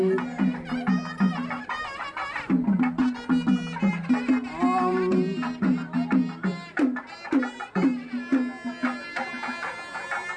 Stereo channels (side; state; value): both; identical; correlation 1.00